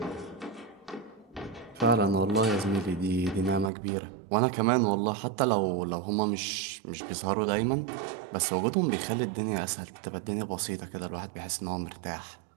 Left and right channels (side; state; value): left; drops out; at 3.7 s